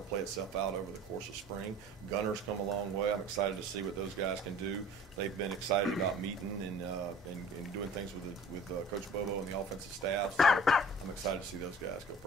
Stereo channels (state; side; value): normal; both; correlation 0.46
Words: play itself out over the course of spring. Gunner's come a long way. I'm excited to see what those guys can do. They've been excited about meeting and doing things with Coach Bobo and the offensive staff. So I'm excited to see those guys go